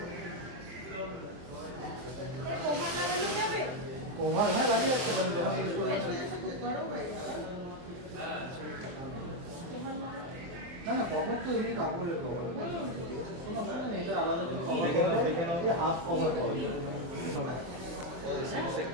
ওভার হ্যাঁ লাগিয়ে রাখতে পারেন যখন ইউজ করবেন। না না, কভার তো এমনি কাপড়ের কভার, কোনো অসুবিধা নেই, এটা আলাদা কিছু দেখে নাও, হাফ কভার করে। সে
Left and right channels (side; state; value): left; late; 23 ms